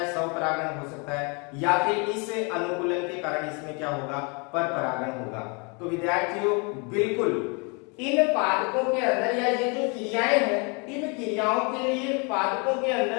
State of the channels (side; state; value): right; quieter; 33.0 dB